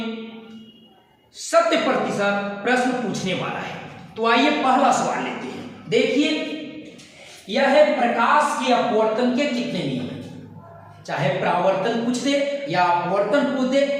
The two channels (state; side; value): identical; both; correlation 1.00